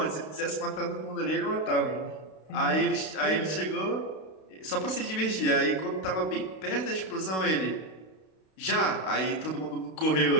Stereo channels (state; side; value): late; right; 32 ms